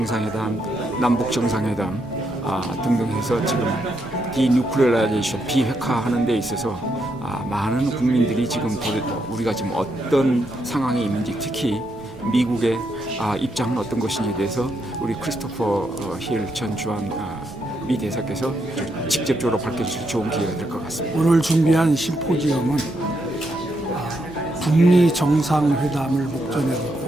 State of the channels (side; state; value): both; normal; correlation 0.79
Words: 남북 정상회담 등등 해서 지금 디뉴클리어라이제이션 비핵화하는 데 있어서 많은 국민들이 지금 우리가 지금 어떤 상황에 있는지 특히 미국의 입장은 어떤 것인지에 대해서 우리 크리스토퍼 힐 전 주한 미 대사께서 직접적으로 밝혀주실 좋은 기회가 될 것 같습니다. 오늘 준비한 심포지엄은 북미 정상회담을 목전에